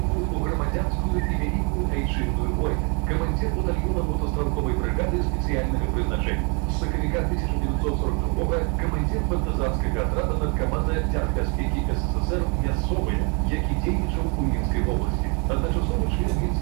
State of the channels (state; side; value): quieter; left; 33.9 dB